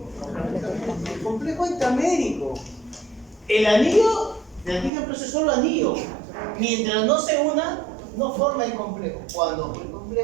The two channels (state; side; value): drops out; left; at 4.9 s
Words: El complejo intramédico. El anillo de antígeno protector es solo anillo. Mientras no se una, no forma el complejo. Cuando el